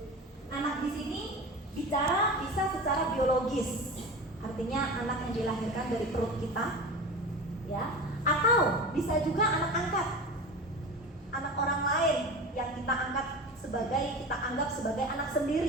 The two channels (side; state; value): both; normal; correlation 0.30